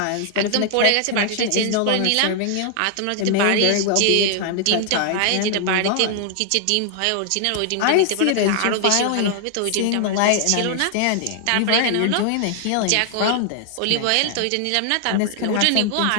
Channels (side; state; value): both; different; correlation 0.00